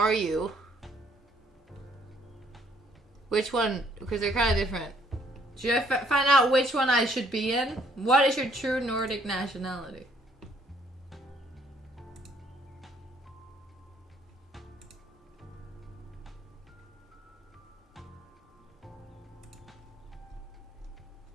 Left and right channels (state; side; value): normal; both; correlation 0.64